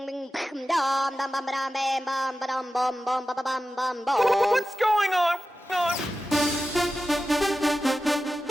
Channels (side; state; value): both; normal; correlation 0.94